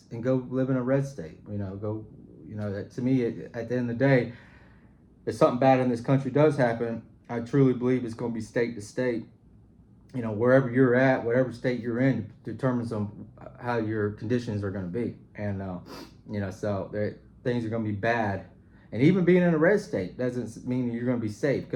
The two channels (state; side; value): identical; both; correlation 1.00